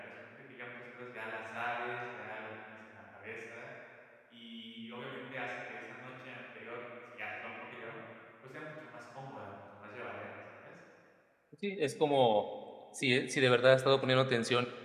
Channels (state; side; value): identical; both; correlation 1.00